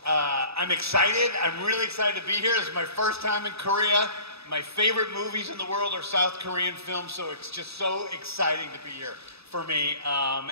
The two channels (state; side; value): late; left; 0.78 ms